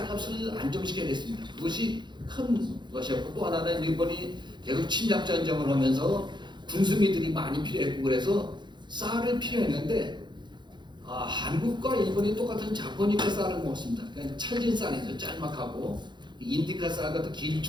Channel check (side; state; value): left; late; 0.22 ms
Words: 안정시켜야 됐습니다. 그것이 큰 것이었고 또 하나는 일본이 계속 침략 전쟁을 하면서 군수미들이 많이 필요했고 그래서 쌀을 필요했는데 한국과 일본이 똑같은 자포니카 쌀을 먹습니다. 그냥 찰진 쌀이죠. 짤막하고 인디카 쌀 같은